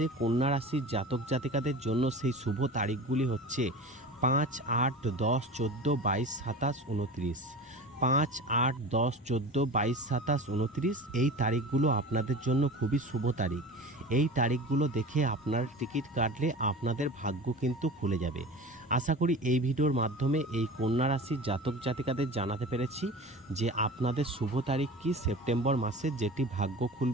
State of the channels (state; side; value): normal; both; correlation 0.34